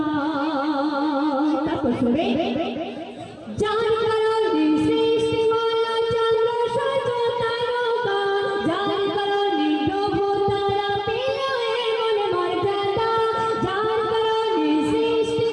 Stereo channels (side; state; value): both; identical; correlation 1.00